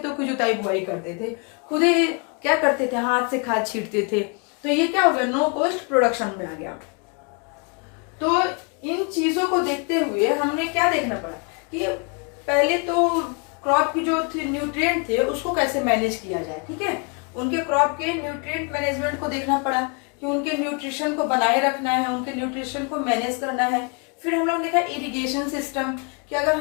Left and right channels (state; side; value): quieter; right; 35.1 dB